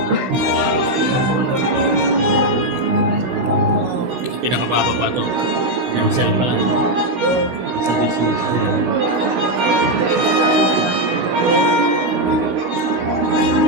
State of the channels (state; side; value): late; left; 16 ms